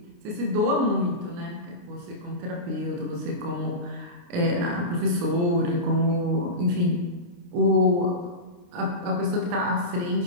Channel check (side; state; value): left; late; 29 ms